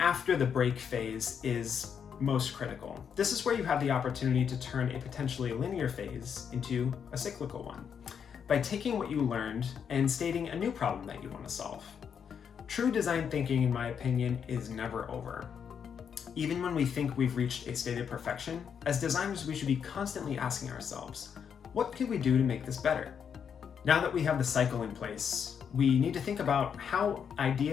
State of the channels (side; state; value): right; quieter; 7.4 dB